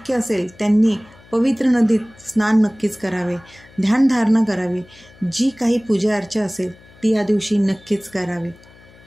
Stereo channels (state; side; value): noise; left; hum, 25 dB below the sound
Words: असेल त्यांनी पवित्र नदीत स्नान नक्कीच करावे, ध्यानधारणा करावी, जी काही पूजा अर्चा असेल ती या दिवशी नक्कीच करावी.